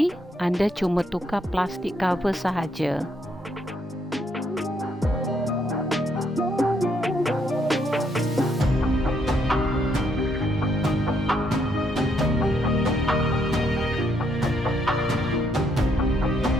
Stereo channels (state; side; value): normal; both; correlation 0.74